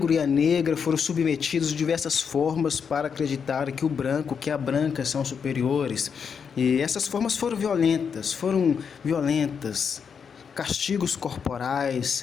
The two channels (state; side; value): quieter; right; 6.6 dB